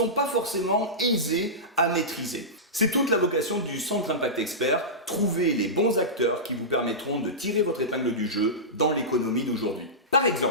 pas forcément aisées à maîtriser. C'est toute la vocation du Centre Impact Expert, trouver les bons acteurs qui vous permettront de tirer votre épingle du jeu dans l'économie d'aujourd'hui. Par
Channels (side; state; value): both; normal; correlation -0.16